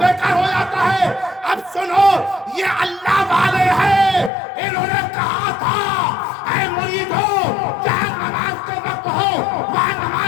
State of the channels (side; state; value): right; drops out; at 4.3 s